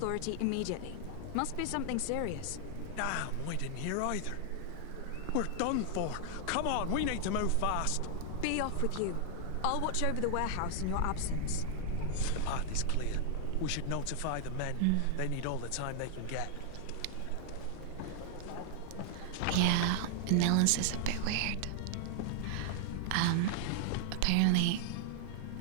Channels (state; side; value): different; both; correlation 0.00